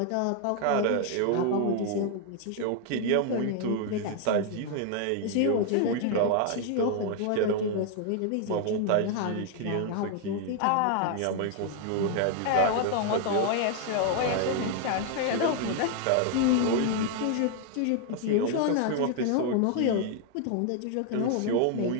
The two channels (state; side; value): different; both; correlation 0.00